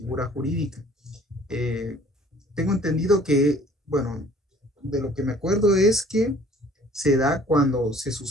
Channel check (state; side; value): normal; both; correlation 0.54